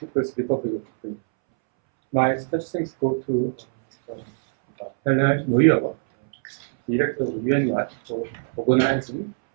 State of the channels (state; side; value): silent; left; 63 dB below the other